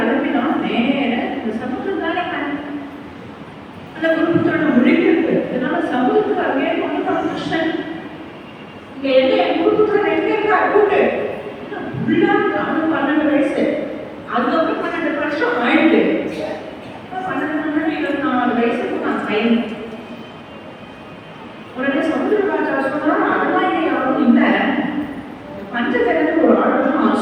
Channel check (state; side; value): identical; both; correlation 1.00